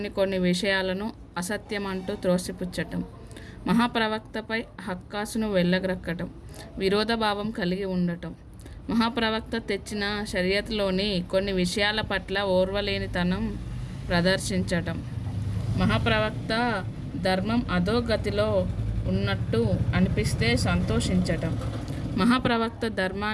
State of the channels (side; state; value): both; identical; correlation 1.00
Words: కొన్ని విషయాలను అసత్యమంటూ త్రోసిపుచ్చటం, మహాప్రవక్తపై హక్కాసును వెళ్ళగ్రక్కటం, విరోధభావం కలిగి ఉండటం, మహాప్రవక్త తెచ్చిన షరియతులోని కొన్ని విషయాల పట్ల ఓర్వలేనితనం ప్రదర్శించటం, మహాప్రవక్త ధర్మం అధోగతిలో ఉన్నట్టు అనిపిస్తే సంతోషించటం, మహాప్రవక్త